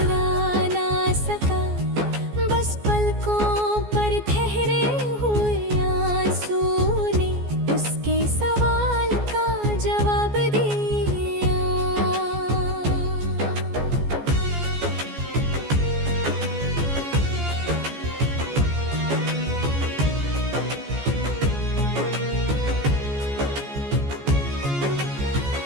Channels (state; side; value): late; left; 14 ms